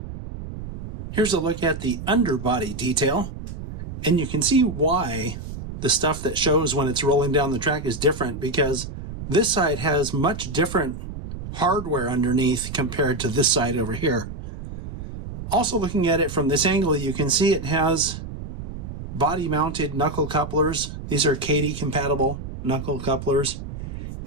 Here's a look at the underbody detail, and you can see why the stuff that shows when it's rolling down the track is different, because this side has much different hardware underneath compared to this side over here. Also, looking at it from this angle, you can see it has body-mounted knuckle couplers. These are Kadee-compatible knuckle couplers.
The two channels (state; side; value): noise; right; rumble, 9 dB below the sound